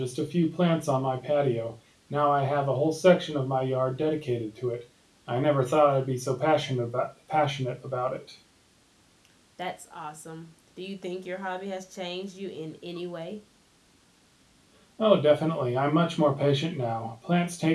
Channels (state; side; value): identical; both; correlation 1.00